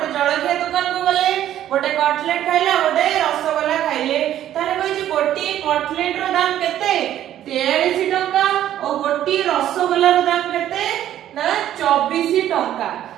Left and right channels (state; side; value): quieter; left; 11.8 dB